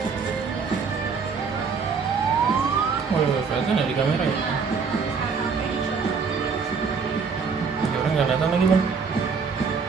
Oh iya, kelihatan ya di kamera ya. Ini orang nggak kelihatan lagi bang.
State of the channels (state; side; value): quieter; left; 5.4 dB